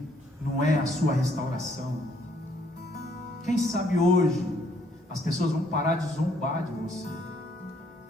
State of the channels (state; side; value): normal; both; correlation 0.67